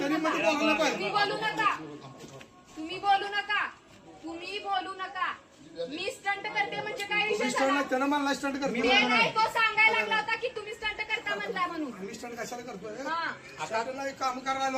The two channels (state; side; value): identical; both; correlation 1.00